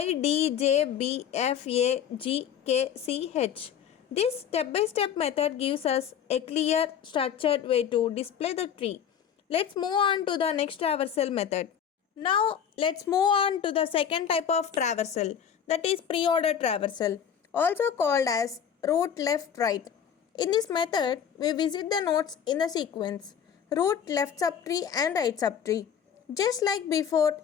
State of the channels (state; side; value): quieter; right; 8.3 dB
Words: D, J, B, F, A, G, K, C, H. This step-by-step method gives us a clear, structured way to display the tree. Let's move on to the next traversal method. Now, let's move on to the second type of traversal, that is pre-order traversal, also called as root left right. In this method, we visit the nodes in the sequence root left subtree and right subtree. Just like before,